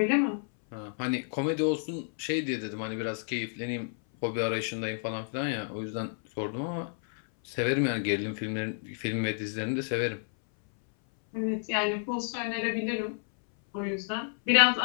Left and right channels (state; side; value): silent; right; 58 dB below the other